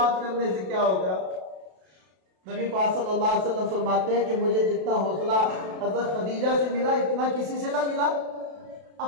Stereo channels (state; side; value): late; left; 32 ms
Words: करने से क्या होगा। नबी पाक सल्लल्लाहु अलैहि वसल्लम फरमाते हैं कि मुझे जितना हौसला हज़रत खदीजा से मिला इतना किसी से ना मिला।